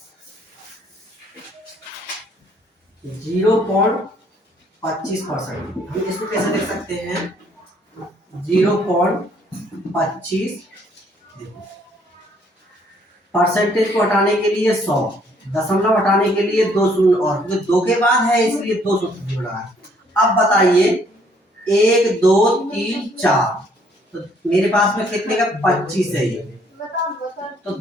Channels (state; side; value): normal; both; correlation 0.64